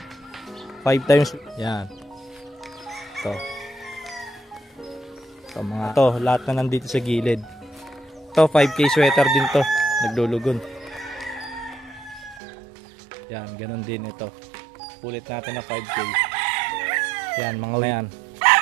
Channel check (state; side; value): drops out; left; at 12.4 s